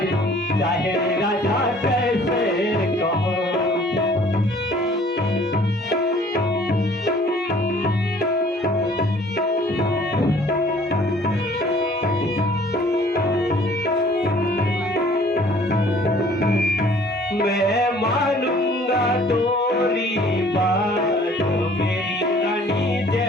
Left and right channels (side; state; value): both; normal; correlation 0.55